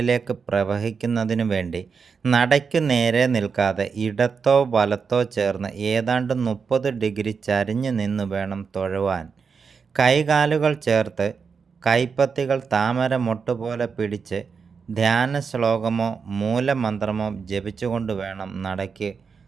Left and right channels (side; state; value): left; quieter; 5.7 dB